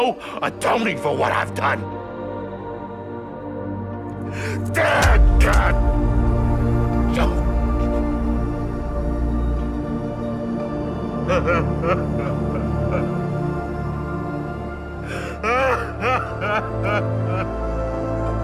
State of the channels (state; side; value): identical; both; correlation 1.00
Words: atoning for what I've done. Damn, God!